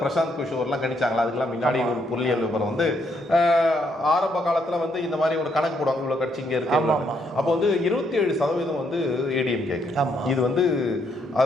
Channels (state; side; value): normal; both; correlation 0.74